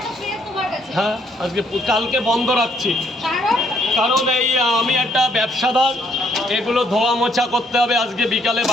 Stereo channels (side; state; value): both; normal; correlation 0.69